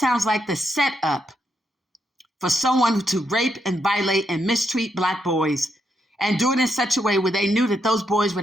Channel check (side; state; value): both; normal; correlation 0.80